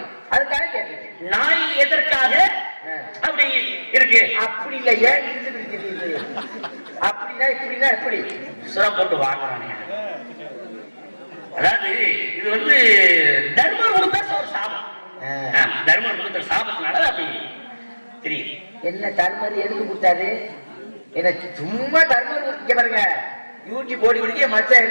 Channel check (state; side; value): inverted; both; correlation -1.00